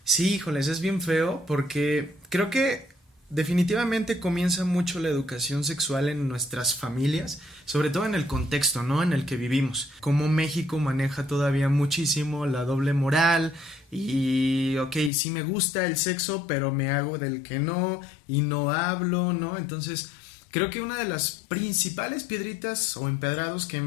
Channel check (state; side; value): drops out; right; at 15.1 s